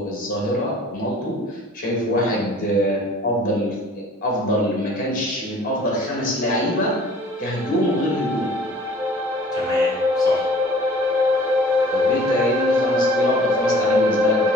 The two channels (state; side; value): normal; both; correlation 0.49